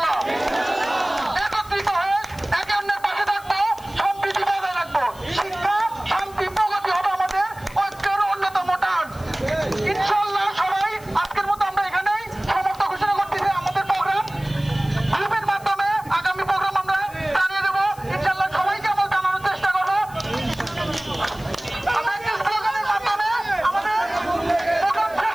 একত্রিত হয়ে একে অন্যের পাশে থাকবো, সম্প্রীতি বজায় রাখবো। শিক্ষা, শান্তি, প্রগতি হবে আমাদের ঐক্যের অন্যতম টান। ইনশাআল্লাহ সবাই আজকের মতো আমরা এখানেই সমাপ্ত ঘোষণা করতেছি। আমাদের প্রোগ্রাম গ্রুপের মাধ্যমে আগামী প্রোগ্রাম আমরা জানিয়ে দেবো। ইনশাআল্লাহ সবাইকে আমরা জানানোর চেষ্টা করবো। আমরা একটি স্লোগানের মাধ্যমে আমাদের প্রোগ্রাম শেষ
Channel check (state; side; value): noise; left; hiss, 22 dB below the sound